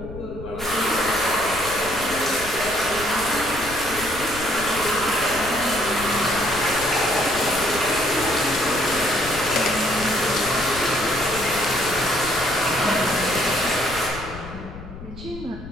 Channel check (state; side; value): noise; left; rumble, 13 dB below the sound